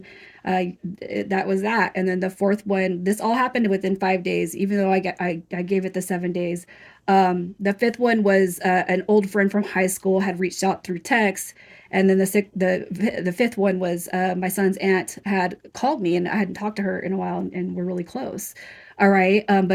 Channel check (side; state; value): both; identical; correlation 1.00